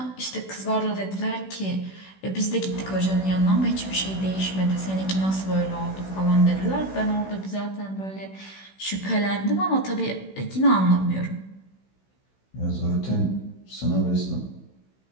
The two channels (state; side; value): late; right; 16 ms